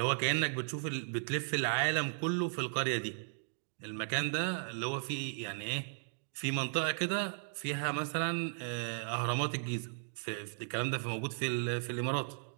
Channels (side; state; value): left; silent; digital silence